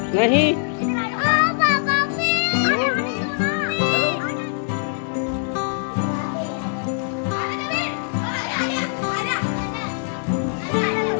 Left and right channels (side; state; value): right; silent; 64 dB below the other